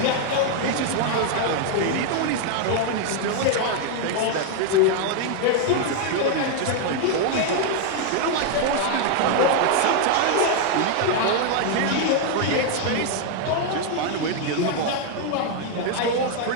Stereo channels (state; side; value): different; both; correlation 0.00